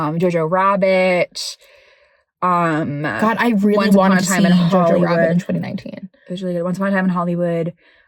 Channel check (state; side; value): identical; both; correlation 1.00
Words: Rabbit. God, I really wanted to see Jojo Rabbit in 2019. It was really good. Once Upon a Time in Hollywood.